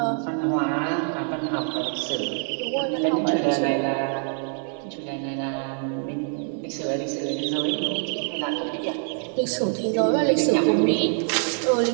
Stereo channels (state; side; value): silent; left; 55 dB below the other